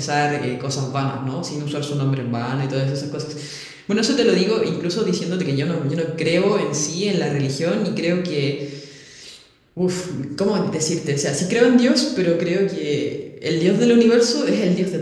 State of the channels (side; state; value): both; identical; correlation 1.00